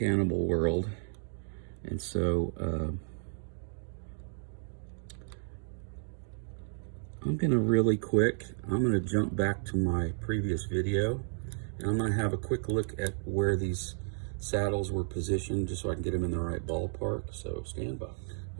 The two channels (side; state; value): left; silent; digital silence